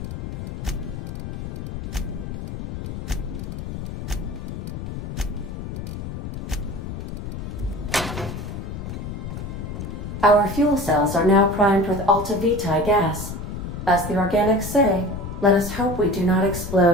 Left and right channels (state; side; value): noise; left; rumble, 7 dB below the sound